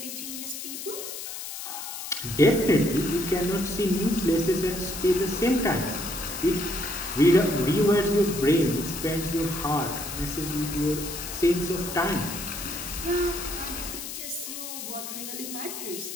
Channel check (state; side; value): noise; left; hiss, 8 dB below the sound